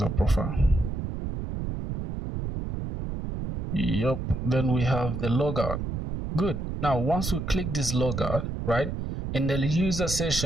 profile. Yep, then we have the logout. Good. Now once we click this logout, right, in the user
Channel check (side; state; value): right; noise; rumble, 4 dB below the sound